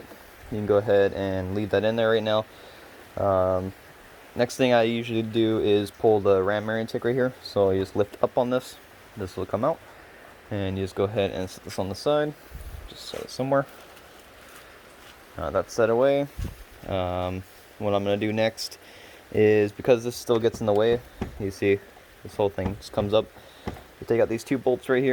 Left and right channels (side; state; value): both; identical; correlation 1.00